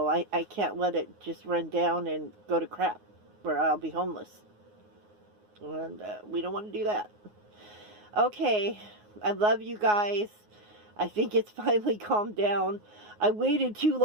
I can't let it just run down and go to crap where I'll be homeless. And we don't want to do that. Okay. I love you guys. I think it's finally calmed down. I waited too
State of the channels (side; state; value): left; late; 9.5 ms